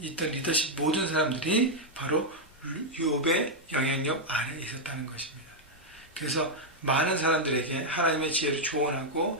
있던 리더십 모든 사람들이 바로 욥의 영향력 아래에 있었다는 것입니다. 그래서 많은 사람들에게 하나님의 지혜를 조언하고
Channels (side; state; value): both; normal; correlation -0.02